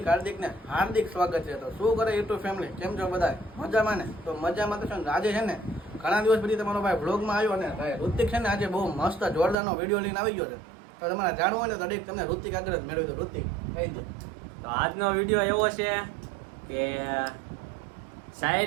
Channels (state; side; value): drops out; left; at 9.6 s